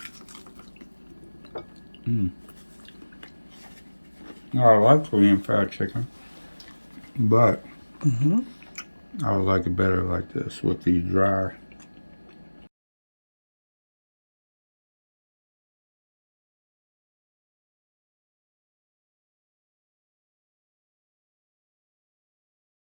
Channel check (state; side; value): inverted; both; correlation -1.00